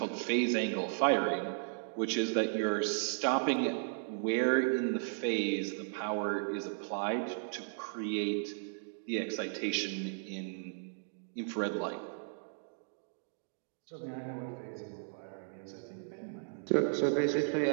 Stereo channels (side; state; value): left; silent; digital silence